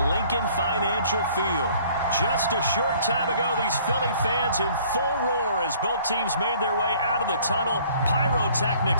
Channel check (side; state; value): both; inverted; correlation -0.56